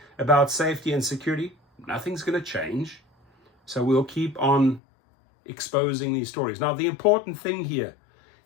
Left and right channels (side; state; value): right; drops out; at 4.8 s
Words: about safety and security, nothing's going to change. So we'll keep on exposing these stories. Now, the important thing here